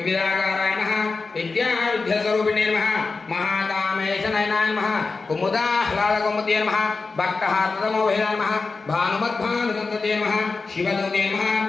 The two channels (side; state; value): right; quieter; 4.1 dB